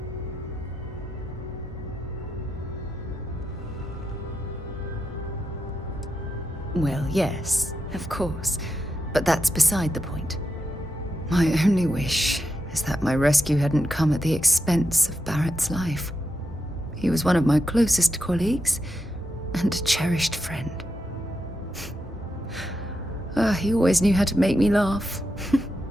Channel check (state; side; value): normal; both; correlation 0.86